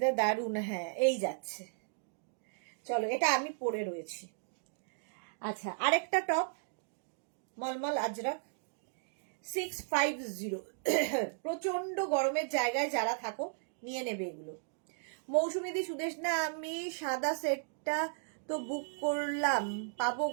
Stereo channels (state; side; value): silent; left; digital silence